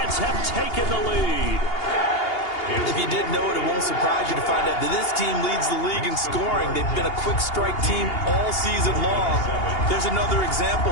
have taken the lead. If you didn't know it, it won't surprise you to find out that this team leads the league in scoring. They've been a quick strike team all season long. There's another example.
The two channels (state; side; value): late; right; 2.8 ms